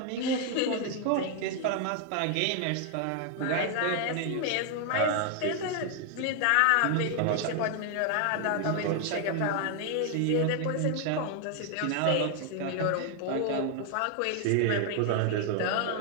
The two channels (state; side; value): different; both; correlation 0.00